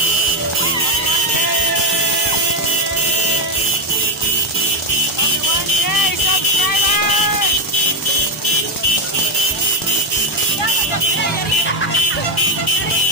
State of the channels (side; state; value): both; normal; correlation 0.06